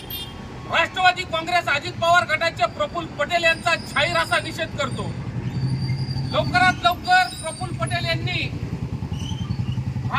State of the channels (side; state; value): both; identical; correlation 1.00